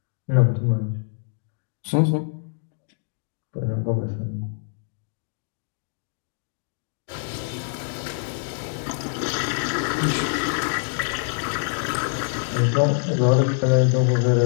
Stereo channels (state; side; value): silent; right; digital silence